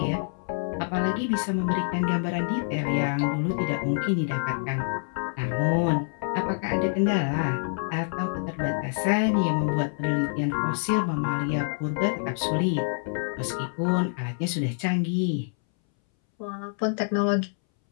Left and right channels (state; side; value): silent; right; 60 dB below the other